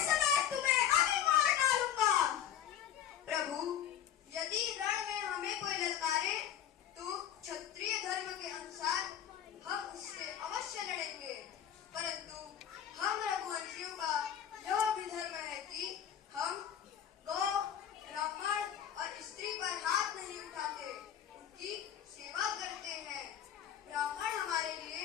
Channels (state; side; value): quieter; right; 9.8 dB